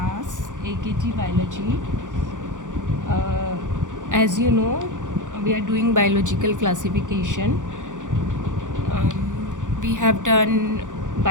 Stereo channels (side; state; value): left; late; 0.87 ms